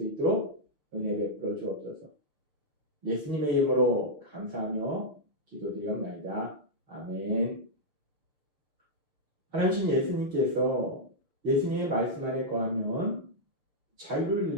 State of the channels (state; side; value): late; left; 6.4 ms